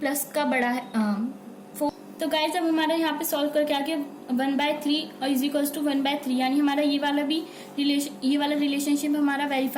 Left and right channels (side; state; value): both; identical; correlation 1.00